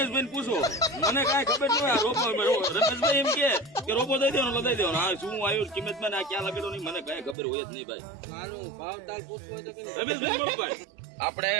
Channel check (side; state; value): left; drops out; at 7.4 s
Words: પૂછો, મને કાંઈ ખબર ન હોય. આ રોબો રમેશભાઈ એમ કે રોબો દઈ દેવાનો લઈ દેવાનો. હા શું આવ્યું કિંમતમાં ને આ ક્યાં લગાડો નહીં મને કાંઈ ખબર હોય જ નહીં ભાઈ. રમેશભાઈ બોલો ભાઈ. આપણે